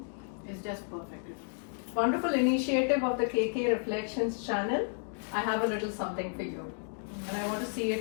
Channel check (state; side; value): silent; right; 56 dB below the other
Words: is just perfect. Wonderful initiative of the KK Reflections channel. I have a little something for you. And I want to see